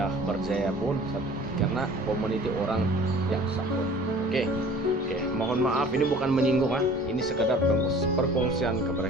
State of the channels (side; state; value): both; normal; correlation 0.47